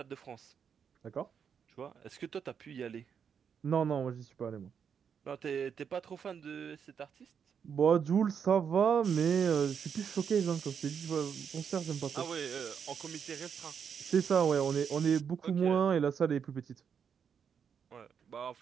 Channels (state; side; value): quieter; left; 7.2 dB